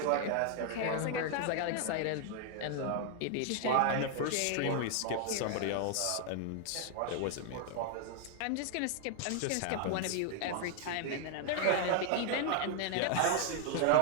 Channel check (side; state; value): both; different; correlation 0.00